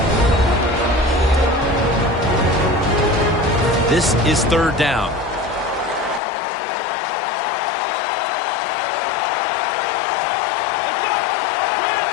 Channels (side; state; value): right; drops out; at 6.2 s